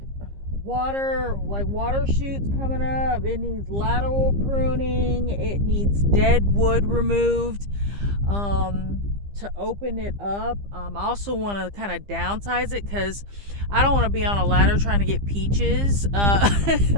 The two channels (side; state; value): left; late; 15 ms